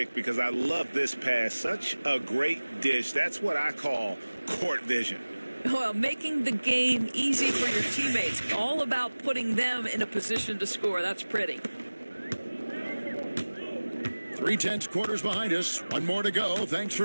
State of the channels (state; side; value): inverted; both; correlation -1.00